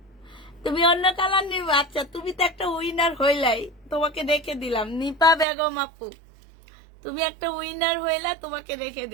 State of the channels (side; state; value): left; drops out; at 5.5 s